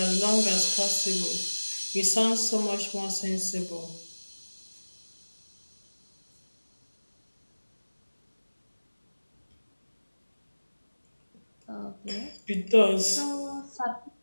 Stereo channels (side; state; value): both; inverted; correlation -1.00